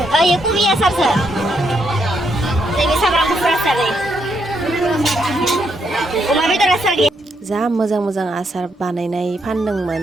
ये पूरी असर से नैबे सामब्राम गुफुर आसार अमा बेदर आसार गैया जा मोजां आसार बानायनाय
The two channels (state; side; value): normal; both; correlation 0.77